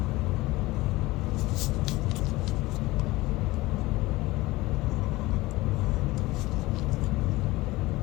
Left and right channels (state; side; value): quieter; right; 19.8 dB